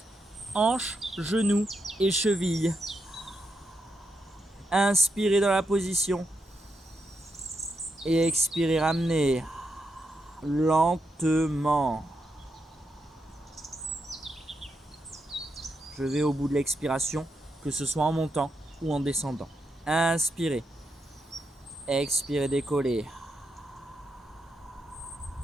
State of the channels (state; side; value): normal; both; correlation 0.83